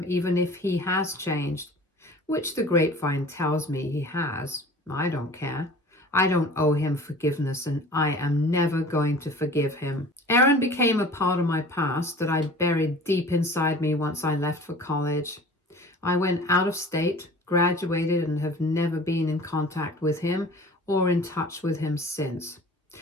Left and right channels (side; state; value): both; normal; correlation 0.43